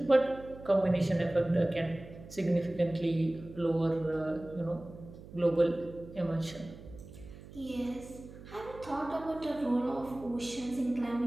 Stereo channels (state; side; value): noise; right; hum, 16 dB below the sound